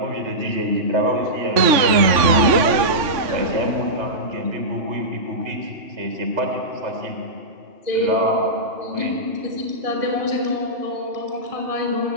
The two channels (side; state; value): left; late; 3.5 ms